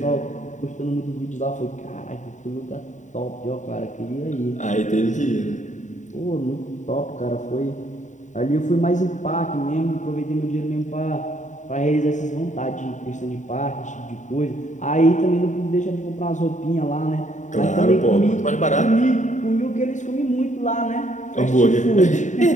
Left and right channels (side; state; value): right; late; 0.36 ms